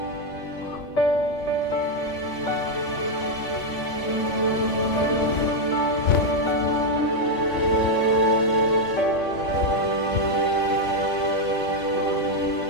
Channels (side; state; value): right; late; 3.6 ms